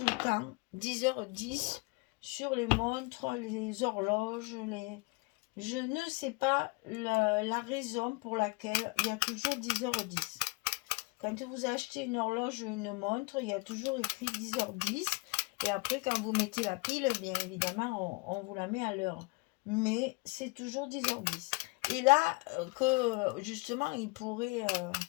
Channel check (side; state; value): right; quieter; 28.0 dB